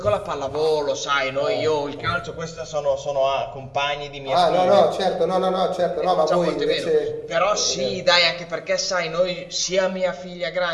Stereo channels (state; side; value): identical; both; correlation 1.00